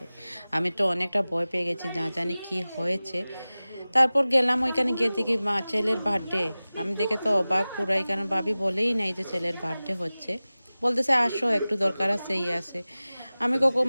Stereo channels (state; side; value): inverted; both; correlation -0.97